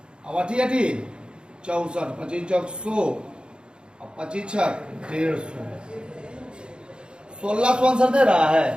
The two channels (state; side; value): late; left; 0.052 ms